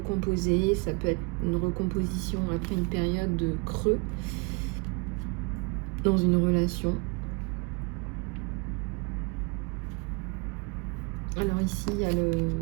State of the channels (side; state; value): left; quieter; 29.8 dB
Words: ça peut être une recomposition après une période de creux dans une relation. Alors ici, il y a